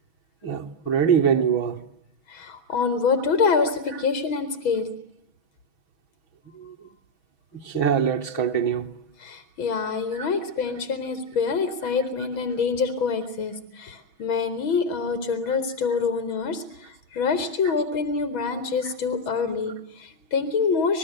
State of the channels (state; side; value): late; right; 6.2 ms